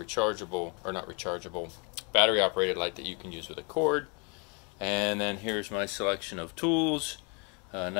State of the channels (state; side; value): quieter; right; 34.1 dB